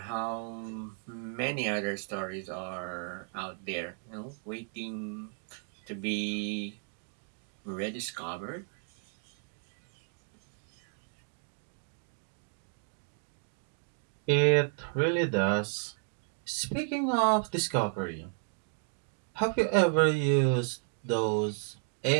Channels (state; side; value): silent; left; 55 dB below the other